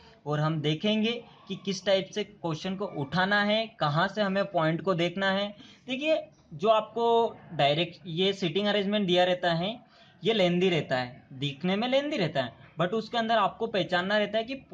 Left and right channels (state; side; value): identical; both; correlation 1.00